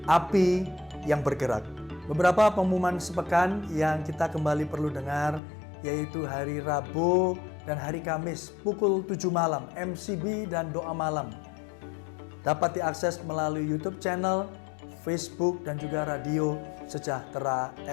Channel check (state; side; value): drops out; right; at 5.4 s